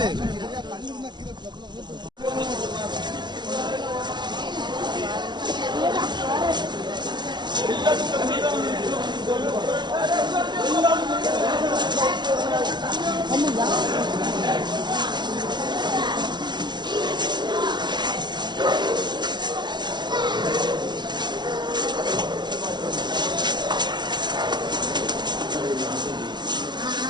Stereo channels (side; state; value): left; late; 0.21 ms